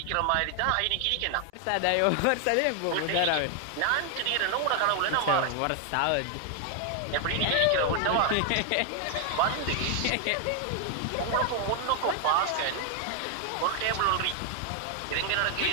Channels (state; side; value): different; both; correlation 0.00